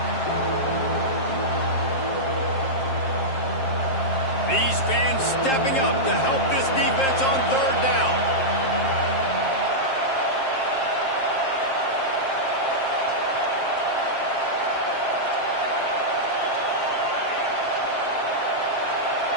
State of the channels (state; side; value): late; right; 7.5 ms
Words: These fans stepping up to help this defense on third down.